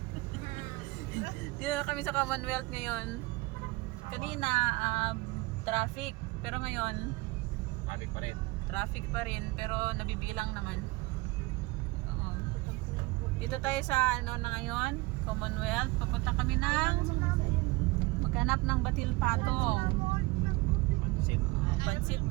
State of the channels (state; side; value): quieter; left; 22.5 dB